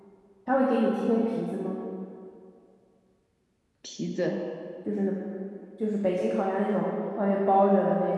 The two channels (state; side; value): identical; both; correlation 1.00